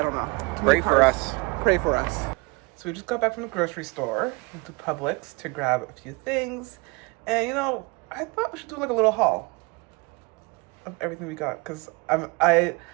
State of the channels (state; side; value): quieter; left; 27.6 dB